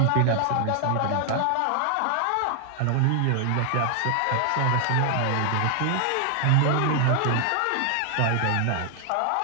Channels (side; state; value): both; different; correlation 0.00